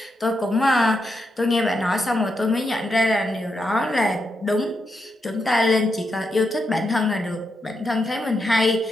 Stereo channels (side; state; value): both; normal; correlation 0.84